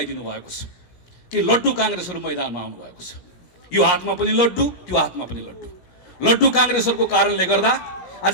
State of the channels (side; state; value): right; late; 17 ms